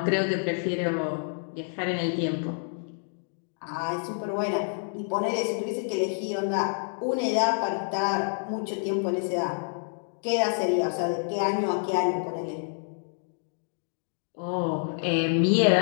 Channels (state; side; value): silent; right; 59 dB below the other